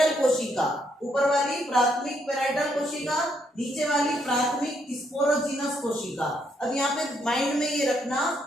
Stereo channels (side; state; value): both; normal; correlation 0.74